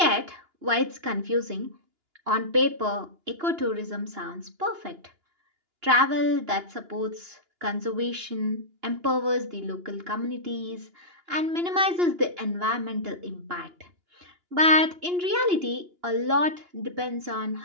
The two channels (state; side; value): late; left; 2.9 ms